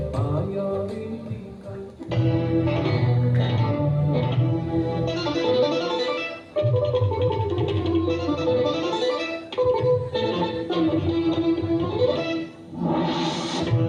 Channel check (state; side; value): identical; both; correlation 1.00